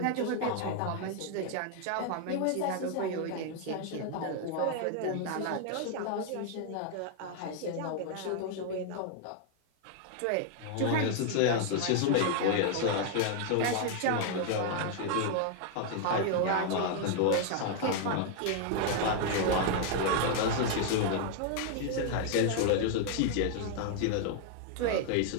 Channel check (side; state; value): both; different; correlation 0.00